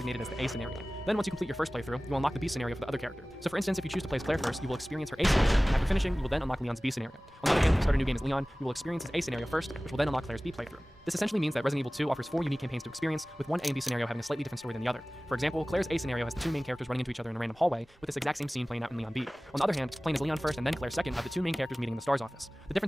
as the A scenario. Then once you complete your first playthrough, you will unlock the B scenario for the other character. So for instance, if you choose to play as Claire first, you will experience her A scenario, and after finishing, you will then unlock Leon's B scenario. On the other hand, if you start a new game as Leon, you will experience his A scenario first, which will then unlock Claire's B playthrough. This essentially means that Resident Evil 2 offers 4 unique campaigns to experience, with one A and B scenario having a slightly different story than the other. For example, Claire's A scenario has the 2 main characters running into each other in a random hallway, with this exact same scene playing out in Leon B. On the other hand, playing as Leon first and then Claire second have the 2 main characters meeting in the STARS office. The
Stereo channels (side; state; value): both; normal; correlation 0.98